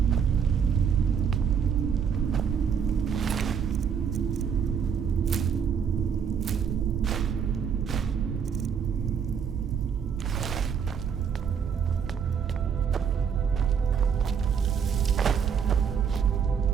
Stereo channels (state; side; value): quieter; left; 7.1 dB